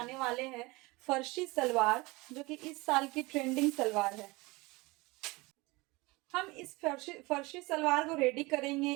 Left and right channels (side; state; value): left; quieter; 23.5 dB